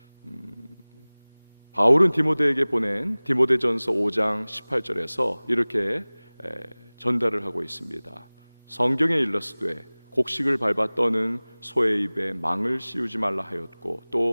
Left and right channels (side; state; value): both; inverted; correlation -1.00